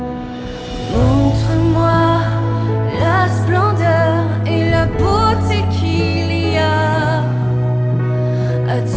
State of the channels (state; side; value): identical; both; correlation 1.00